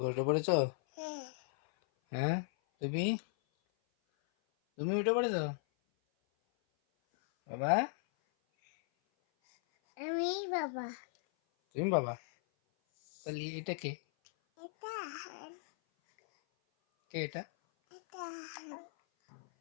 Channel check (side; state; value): right; silent; 53 dB below the other